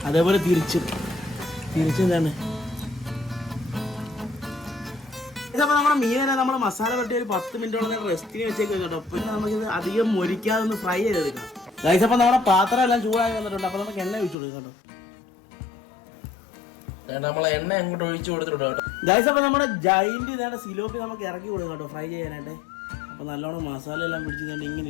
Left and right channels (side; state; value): right; drops out; at 14.4 s